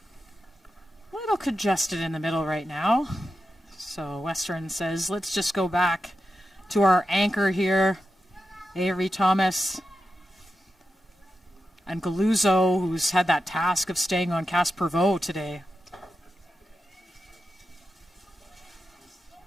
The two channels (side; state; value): both; normal; correlation 0.89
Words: A little congested in the middle right now. So Western says, let's just go back to our anchor here. Avery Thomas and Galuzzo, who's had that task of staying on Caspervo today.